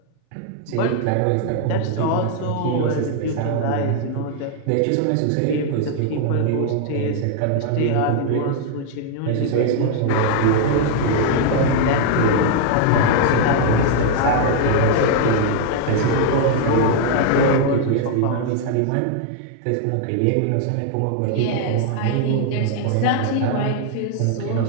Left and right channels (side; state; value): both; different; correlation 0.00